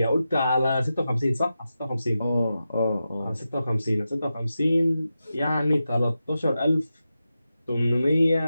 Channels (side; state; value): both; inverted; correlation -0.91